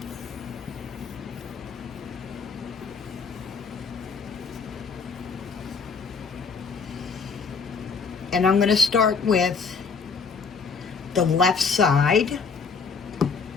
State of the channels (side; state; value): right; quieter; 5.3 dB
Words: And I'm going to start with the left side,